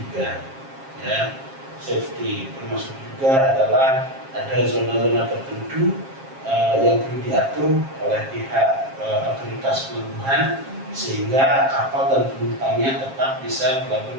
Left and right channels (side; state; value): left; late; 7.4 ms